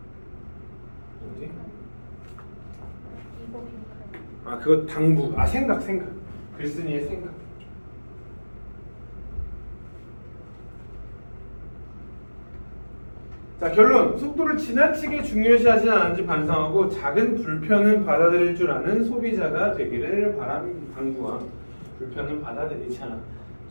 어디? 이거 빈칸. 아, 그거 당부. 아, 생각. 글쓴이의 생각. 자, 결론. 속도를 지나치게 중요시하지 않은지 반성하고 작은 불편은 받아들일 줄 아는 소비자가 되기를 당부와 불편은 받아들이자.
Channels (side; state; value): both; inverted; correlation -1.00